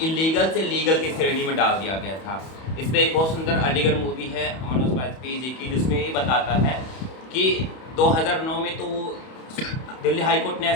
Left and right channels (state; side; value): late; right; 31 ms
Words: इलीगल से लीगल की श्रेणी में डाल दिया गया था। इस पर एक बहुत सुंदर अलीगढ़ मूवी है मनोज वाजपेयी जी की, जिसमें ये बताता है कि 2009 में तो दिल्ली हाई कोर्ट ने